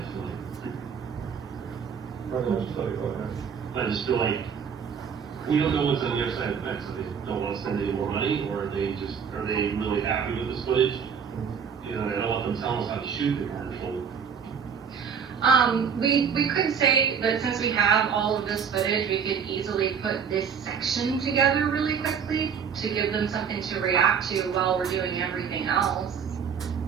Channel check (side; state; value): left; quieter; 6.9 dB